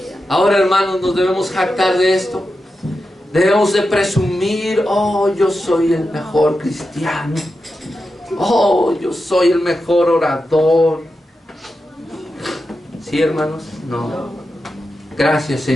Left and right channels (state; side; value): normal; both; correlation 0.90